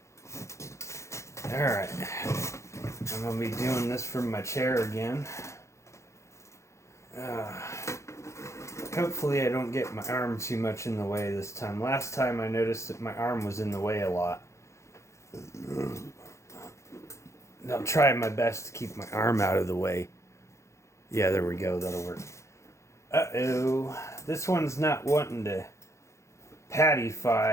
Alright. I'm going to be doing this from my chair again. Hopefully I don't get my arm too much in the way this time. Last time I noticed that my arm was in the way a lot. I'm trying my best to keep my arm out of the way. Yeah, there we go. That'll work. Uh-oh. This one's not wanting to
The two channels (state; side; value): late; right; 0.14 ms